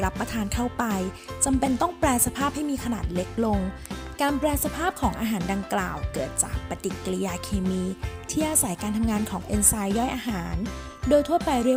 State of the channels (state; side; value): identical; both; correlation 1.00